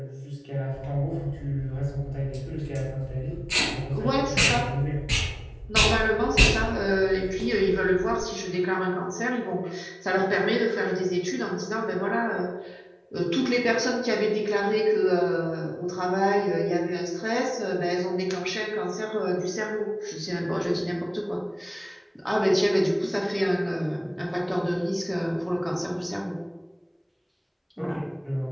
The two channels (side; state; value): both; identical; correlation 1.00